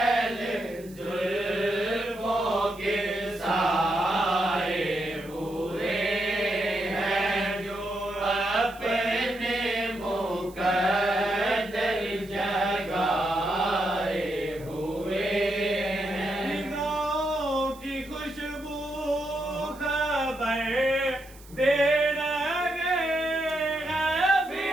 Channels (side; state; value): right; noise; hiss, 23 dB below the sound